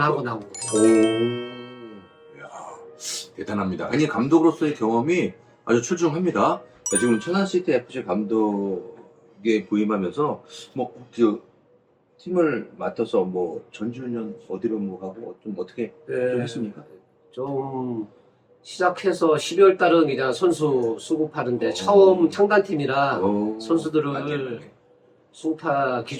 나온 거죠. 이야, 대단합니다. 아니, 감독으로서의 경험이 아주 출중합니다. 지금 천안시티 FC 감독에 부임하면서 팀을 맡아서 전주년 어디로 가고 좀 어떻게 좀 했습니까? 좀 시작해서 12월 달은 그냥 선수 수급하는데 처음 창단팀이라 선수들을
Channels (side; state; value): both; identical; correlation 1.00